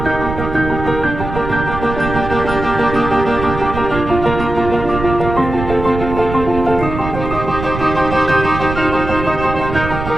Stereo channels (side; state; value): right; noise; rumble, 7 dB below the sound